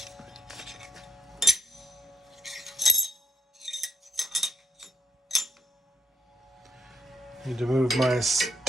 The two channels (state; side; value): normal; both; correlation 0.74